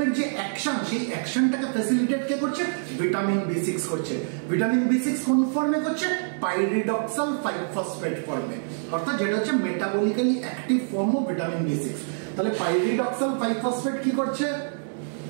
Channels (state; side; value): silent; left; 61 dB below the other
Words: যে অ্যাকশন, সেই অ্যাকশনটাকে ফ্যাসিলিটেট কে করছে? ভিটামিন B6 করছে। ভিটামিন B6 কোন ফর্মে করছে? পাইরিডক্সাল 5-ফসফেট ফর্মে, অর্থাৎ যেটা হচ্ছে metabolically active form of vitamin B6। তাহলে পাইরিডক্সাল 5-ফসফেট কি করছে?